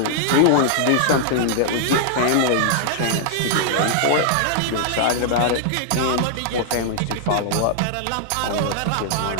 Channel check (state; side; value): different; both; correlation -0.01